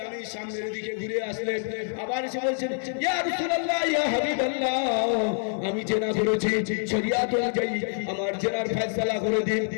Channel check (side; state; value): right; silent; 56 dB below the other